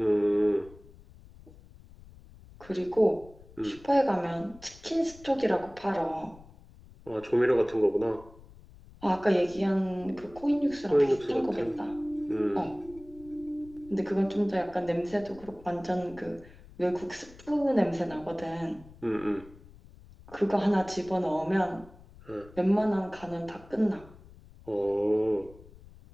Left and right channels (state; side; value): noise; left; rumble, 21 dB below the sound